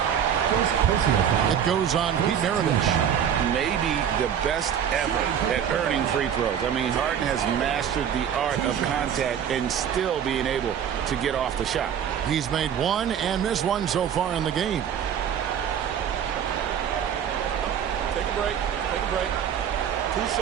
It goes on Pete Maravich. Maybe the best ever at earning free throws. I mean, Harden has mastered the art of contact and still being able to get off the shot. He's made 1 and missed 1 so far in the game. Take a break. Take a break. 2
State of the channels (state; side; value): quieter; left; 8.7 dB